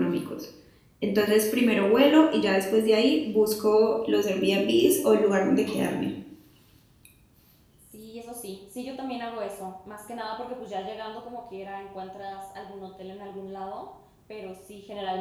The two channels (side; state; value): both; identical; correlation 1.00